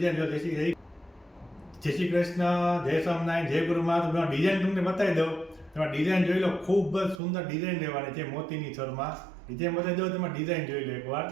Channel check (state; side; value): drops out; left; at 7.2 s